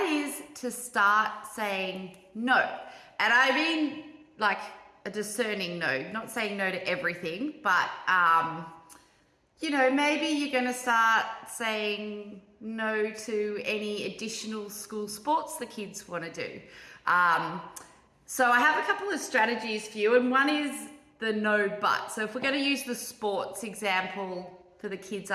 is to start saying no. And I mean like a discerning no, not saying no to everything, but maybe you're going to start saying no to any additional school sports the kids want to do. So I have a couple of strategies for you, and one is the no but. So if we're going to use the sports example for the kids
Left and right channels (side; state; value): both; identical; correlation 1.00